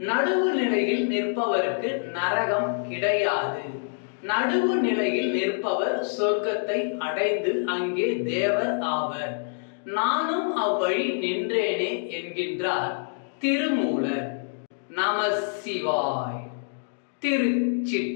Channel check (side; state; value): right; silent; digital silence